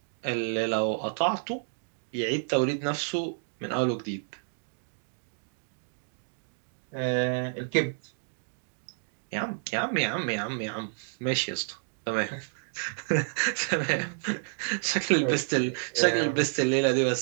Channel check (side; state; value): left; silent; digital silence